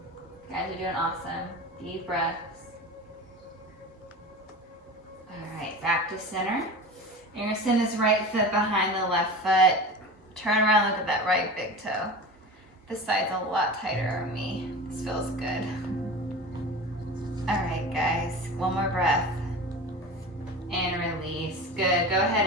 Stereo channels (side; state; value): both; normal; correlation 0.32